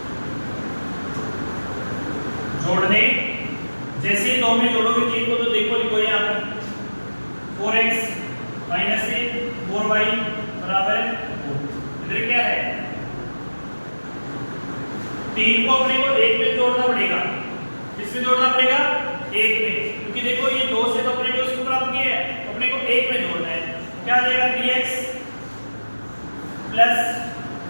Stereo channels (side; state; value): both; inverted; correlation -1.00